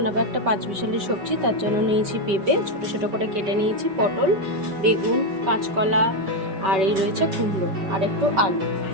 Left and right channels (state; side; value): late; left; 5.2 ms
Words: একটা পাঁচমিশালি সবজি। তার জন্য নিয়েছি পেঁপে, ছোট ছোট করে কেটে নিয়েছি, পটল, বেগুন, কাঁচকলা আর এই রয়েছে কুমড়ো আর একটু আলু।